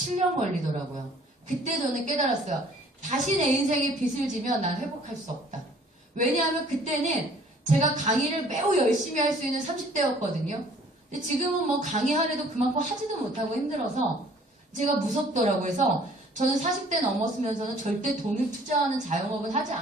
걸리더라고요. 그때 저는 깨달았어요. 다시 내 인생에 빚을 지면 난 회복할 수 없다. 왜냐하면 그때는 제가 강의를 매우 열심히 할 수 있는 30대였거든요. 근데 지금은 뭐 강의하려도 그만큼 하지도 못하고 힘들어서 제가 무섭더라고요. 그래서 저는 40대 넘었으면서는 절대 돈을 투자하는 자영업은 하지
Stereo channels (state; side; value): normal; both; correlation 0.55